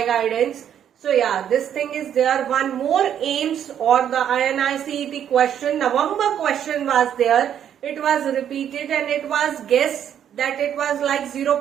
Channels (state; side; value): quieter; left; 9.5 dB